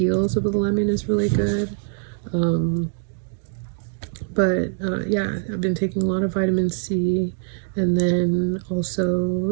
of the lemon is really good. Yeah, I've been taking a lot of vitamin C, and then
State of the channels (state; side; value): silent; left; digital silence